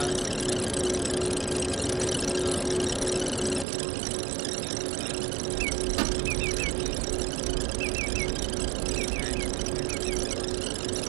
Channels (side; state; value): left; drops out; at 3.7 s